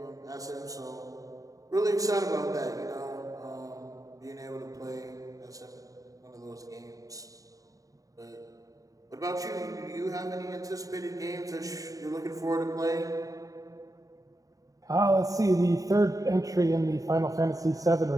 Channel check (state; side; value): late; left; 0.17 ms